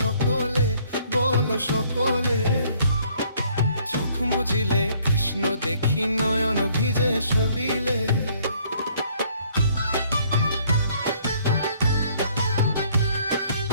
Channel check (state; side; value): inverted; both; correlation -0.62